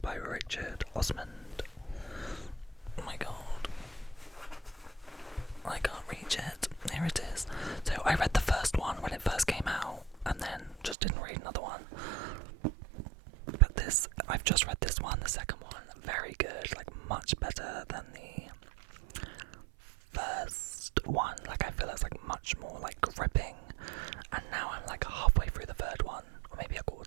Richard Osmond. Oh my god. I can't reach it. Here it is. So I read the first one when it first came out, and then just didn't read another one. But this, I've just read this one, the second one, very good, like much better than the first one. Like I feel it's like much more like gripping, and now I'm like halfway through the third one, or maybe a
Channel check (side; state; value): left; drops out; at 11.0 s